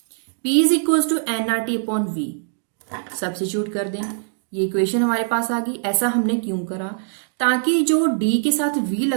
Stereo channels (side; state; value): left; silent; digital silence